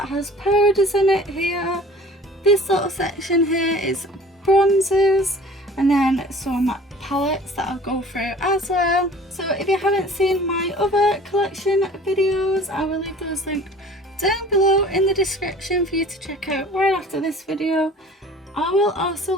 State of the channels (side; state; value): both; normal; correlation 0.46